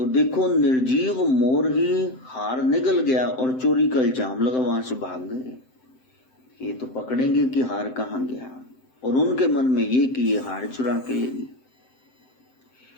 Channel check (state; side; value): late; right; 7.8 ms